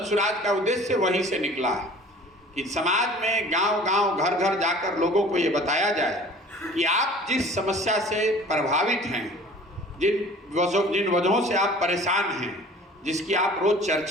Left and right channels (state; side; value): normal; both; correlation 0.47